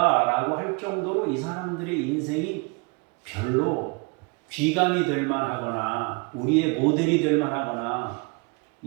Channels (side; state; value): left; quieter; 30.1 dB